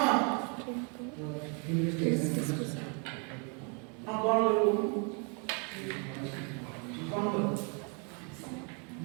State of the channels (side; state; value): left; quieter; 36.8 dB